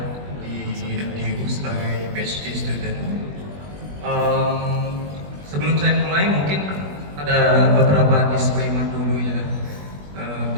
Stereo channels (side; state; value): left; late; 21 ms